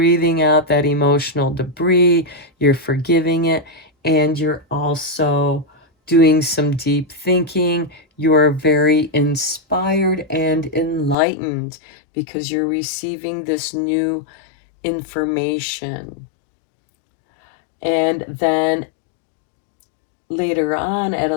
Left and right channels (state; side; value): drops out; right; at 11.2 s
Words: out that emotional debris, you're forgiving it, and you're also doing some deep thinking. You're very inspired and enlightened because you're receiving this new information. And then later on at